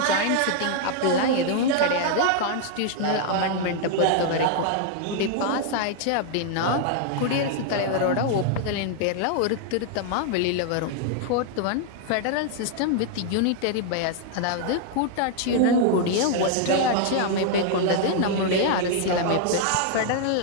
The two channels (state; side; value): different; both; correlation 0.00